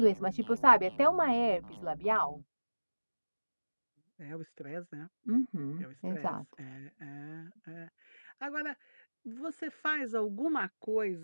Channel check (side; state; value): both; inverted; correlation -1.00